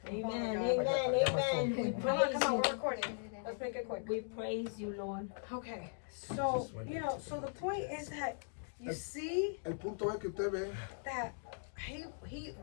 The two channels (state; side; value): silent; right; digital silence